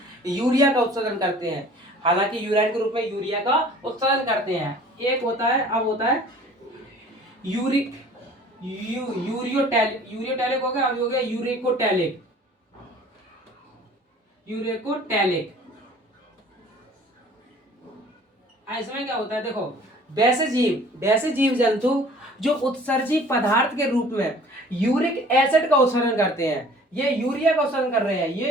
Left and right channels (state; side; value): normal; both; correlation 0.50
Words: यूरिया का उत्सर्जन करते हैं, हालांकि यूराइन के रूप में यूरिया का उत्सर्जन करते हैं। एक होता है, अब होता है यूरियोटैलिक हो गया, अभी हो गया यूरेकोटैलिक। इसमें क्या होता है देखो, वैसे जीव जंतु जो उत्सर्जी पदार्थ के रूप में यूरिक एसिड का उत्सर्जन करते हैं, ये यूरिया का उत्सर्जन कर रहे हैं,